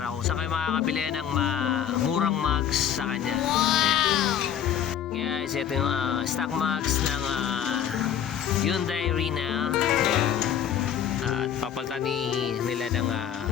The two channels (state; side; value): quieter; right; 9.3 dB